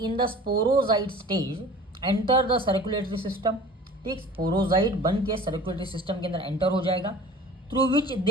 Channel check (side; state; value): both; normal; correlation 0.43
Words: the sporozoite stage enter the circulatory system. ठीक, स्पोरोजाइट बन के सर्कुलेटरी सिस्टम के अंदर एंटर हो जाएगा, through which